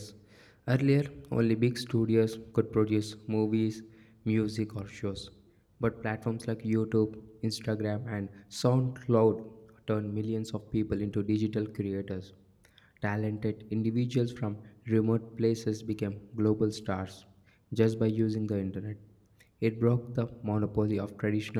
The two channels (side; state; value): both; identical; correlation 1.00